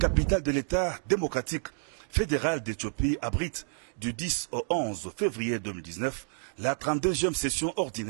de l'État démocratique fédéral d'Éthiopie, abrite du 10 au 11 février 2019 la 32e session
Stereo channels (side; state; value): left; silent; digital silence